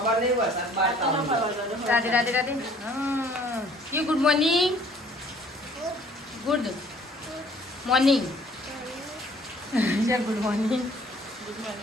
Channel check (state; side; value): normal; both; correlation 0.56